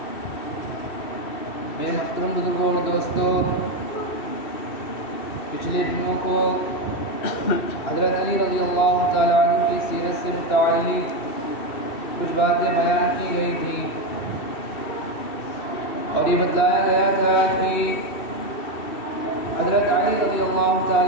میرے محترم بزرگوں اور دوستوں، پچھلے دنوں کو حضرت علی رضی اللہ تعالیٰ عنہ کی سیرت سے متعلق کچھ باتیں بیان کی گئی تھیں اور یہ بتلایا گیا تھا کہ حضرت علی رضی اللہ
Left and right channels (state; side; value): late; right; 2.7 ms